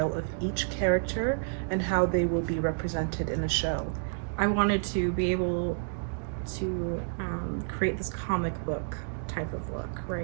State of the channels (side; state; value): left; silent; digital silence